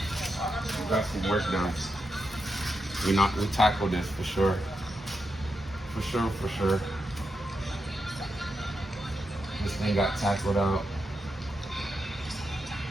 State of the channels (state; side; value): normal; both; correlation 0.86